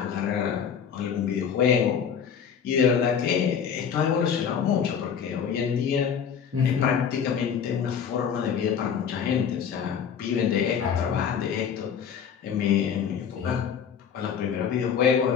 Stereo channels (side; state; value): right; quieter; 7.5 dB